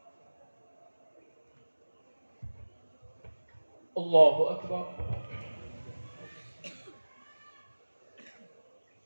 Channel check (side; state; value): both; inverted; correlation -1.00